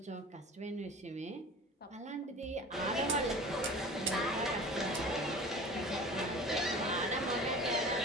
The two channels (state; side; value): normal; both; correlation 0.40